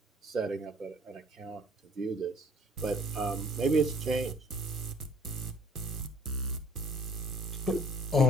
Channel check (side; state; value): both; normal; correlation 0.54